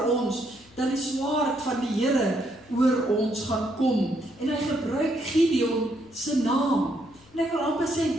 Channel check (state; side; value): noise; left; hum, 27 dB below the sound